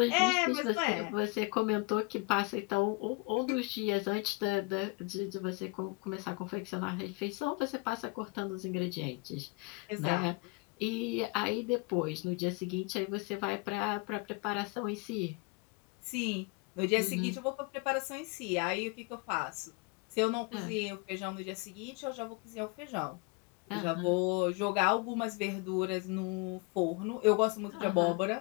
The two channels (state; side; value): quieter; right; 28.0 dB